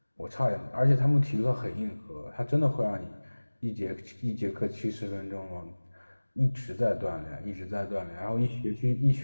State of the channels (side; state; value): both; inverted; correlation -1.00